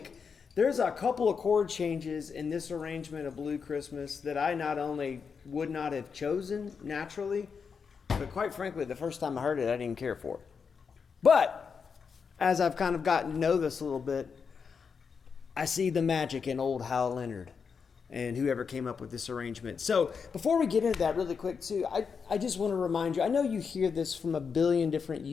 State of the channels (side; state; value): right; quieter; 5.9 dB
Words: there's a couple of chord changes in this arrangement of Blue Christmas that I not only would not have chosen naturally, but quite frankly, the first time I heard it, I didn't care for it. But as I've kind of gotten to know this a little bit, I see the magic in old Hal Leonard and whoever came up with this arrangement. So before we get into that really quick too, I just want to remind you, I know you hear this from a billion different